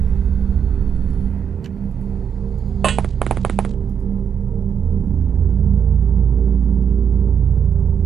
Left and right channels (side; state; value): left; quieter; 7.6 dB